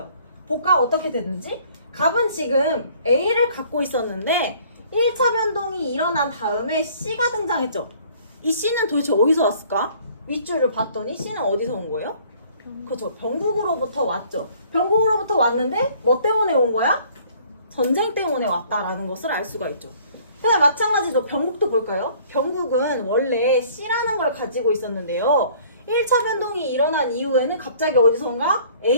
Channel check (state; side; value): inverted; both; correlation -0.56